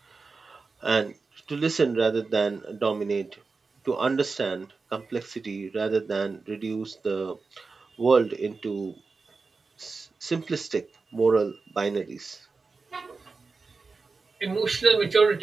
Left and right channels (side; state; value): left; quieter; 4.3 dB